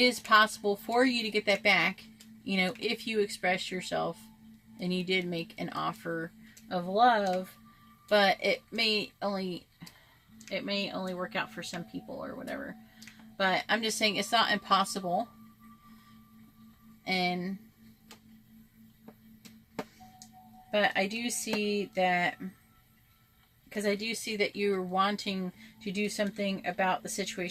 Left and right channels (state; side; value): identical; both; correlation 1.00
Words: possible for you to get that back, you know, if you express yourself and you did make an offer of love, but it may only work out for some people or whatever. But I'm just saying it's not impossible. But I do see that, because I do see that you're wanting to do something about the